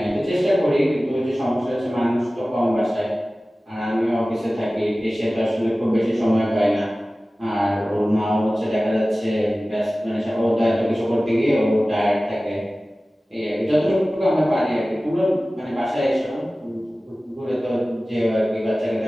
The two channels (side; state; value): both; normal; correlation 0.97